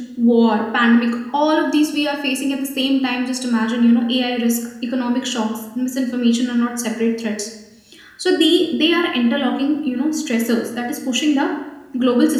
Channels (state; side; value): identical; both; correlation 1.00